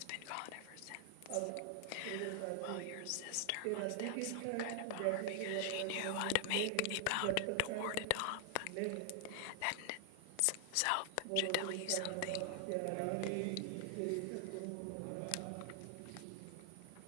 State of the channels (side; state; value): both; different; correlation 0.00